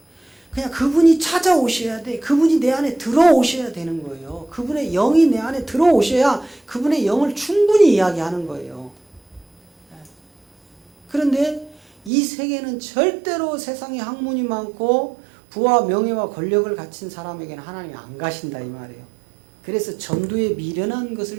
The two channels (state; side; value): drops out; left; at 12.1 s